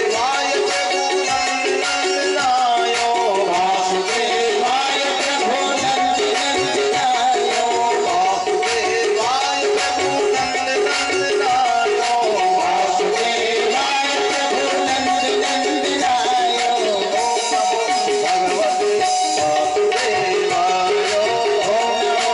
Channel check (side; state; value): both; identical; correlation 1.00